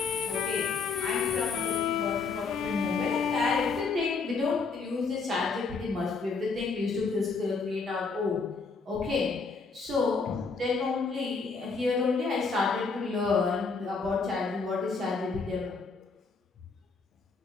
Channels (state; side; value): quieter; right; 4.6 dB